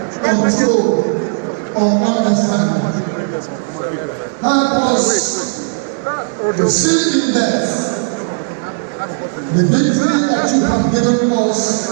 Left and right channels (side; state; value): left; silent; 60 dB below the other